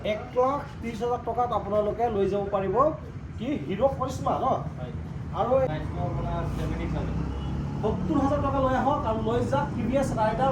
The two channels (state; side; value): identical; both; correlation 1.00